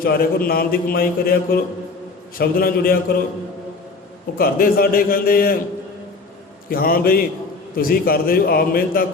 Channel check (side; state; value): right; quieter; 3.9 dB